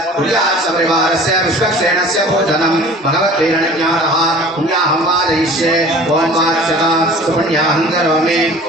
कुर्यात् परिवारस्य विश्वक्षेणस्य भोजनं भगवद्वीरणज्ञानः पुण्याहं वादयिष्ये ॐ वाच्यता सुपुण्याहं करोमि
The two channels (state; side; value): normal; both; correlation 0.44